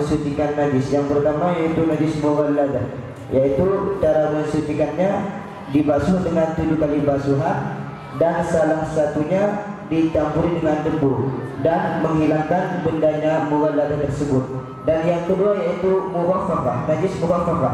najis. Yang pertama yaitu najis mughalladah, yaitu cara mensucikannya dibasuh dengan 7 kali basuhan dan salah satunya dicampuri dengan debu dan menghilangkan bendanya mughalladah tersebut. Dan yang kedua yaitu mukhaffafah, najis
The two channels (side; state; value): both; identical; correlation 1.00